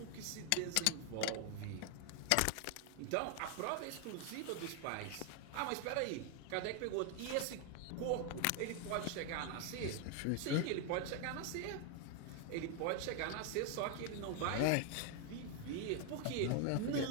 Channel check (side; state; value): both; different; correlation 0.01